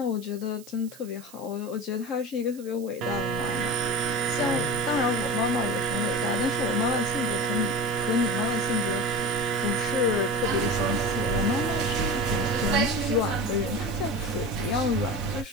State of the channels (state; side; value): noise; right; hiss, 21 dB below the sound